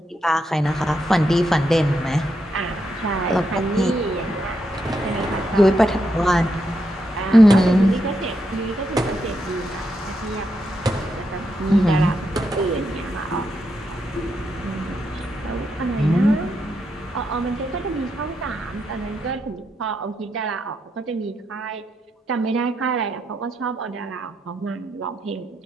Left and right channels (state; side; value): normal; both; correlation 0.82